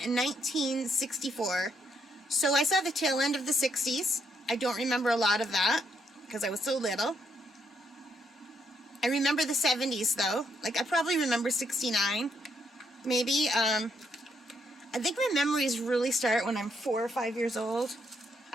so I saw the tail end of the 60s. I don't remember a lot of that because I was so little. I remember the 70s though. Like I probably remember 69, maybe. I think my memories really start when I'm 4 or 5 years old.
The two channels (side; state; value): both; normal; correlation 0.75